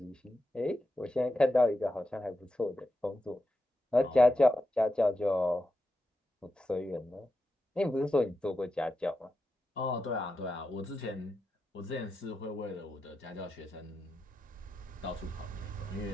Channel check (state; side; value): normal; both; correlation 0.88